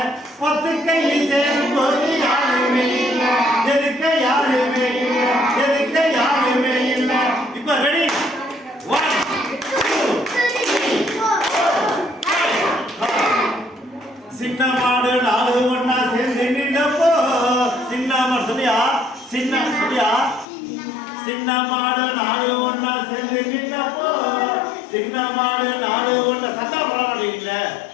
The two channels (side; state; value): right; drops out; at 20.5 s